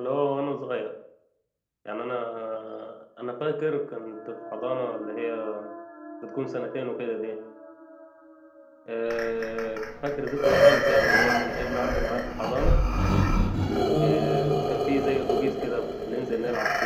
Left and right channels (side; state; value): both; identical; correlation 1.00